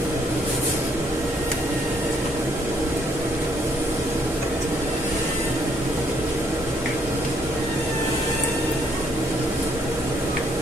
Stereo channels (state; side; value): normal; both; correlation 0.68